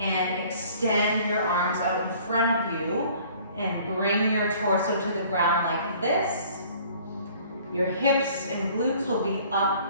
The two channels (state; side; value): inverted; both; correlation -0.53